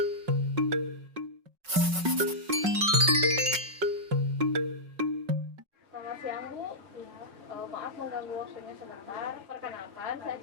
siang Bu. Ya, maaf mengganggu waktunya sebentar. Perkenalkan, saya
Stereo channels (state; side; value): late; left; 5.3 ms